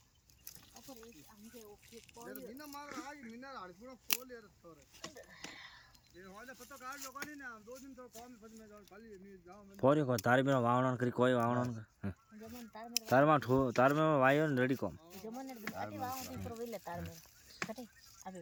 अपर एक हमके ओके यार बिना मार आज मिना हाड़ पूरा खोल यार तोरे ये वाला पता काट लोग नहीं ना 2 दिन तो काम फज में जाओ खाली नहीं जाओ मैं फोरी को तारी में वावण करी कोई वावण जमन तार में तार में ठो तार में वायो ने रेडी कोम जमन ने अटी वाव ती पर वेले तार में कटे अबे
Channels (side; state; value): both; identical; correlation 1.00